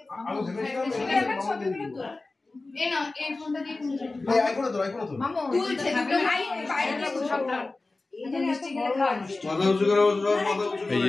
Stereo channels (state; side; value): quieter; right; 3.3 dB